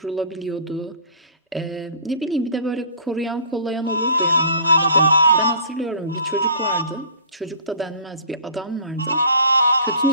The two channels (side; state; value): both; inverted; correlation -0.45